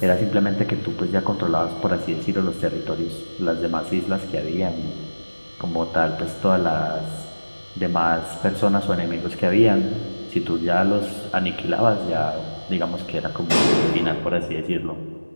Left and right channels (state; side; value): inverted; both; correlation -1.00